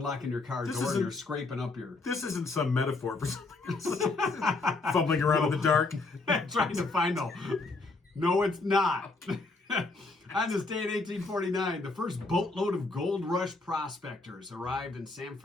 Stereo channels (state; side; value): quieter; right; 3.5 dB